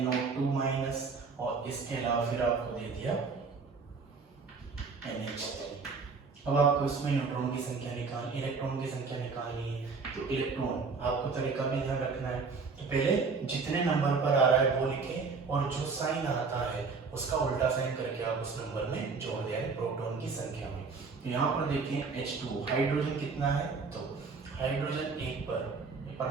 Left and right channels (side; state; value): left; quieter; 4.7 dB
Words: माइनस, और इसके अलावा फिर आपको दे दिया NH3। अब आपको इसमें न्यूट्रॉन की संख्या इलेक्ट्रॉन की संख्या निकालनी है। तो इलेक्ट्रॉन आपको तरीका भी ध्यान रखना है, तो पहले जितने नंबर पर आ रहा है वो लिखें, और जो साइन आता है उसका उल्टा साइन करके आप उस नंबर में जोड़ दें प्रोटॉन की संख्या में। तो यहाँ पर देखें H2 हाइड्रोजन कितना है, तो हाइड्रोजन 1 पर